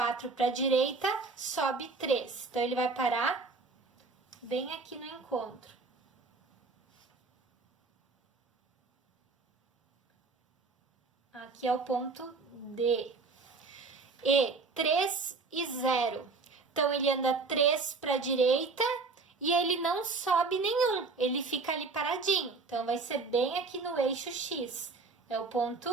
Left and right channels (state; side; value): quieter; left; 4.1 dB